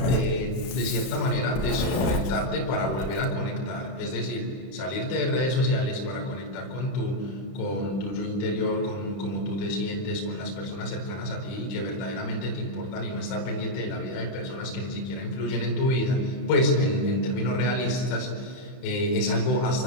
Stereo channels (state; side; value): late; right; 31 ms